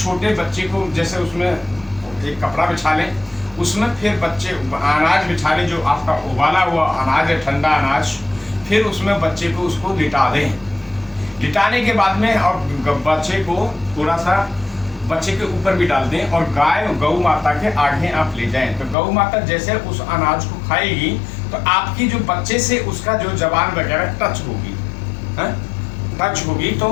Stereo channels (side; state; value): right; drops out; at 18.9 s